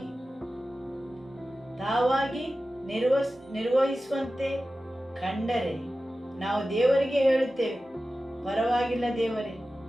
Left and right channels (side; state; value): both; normal; correlation 0.95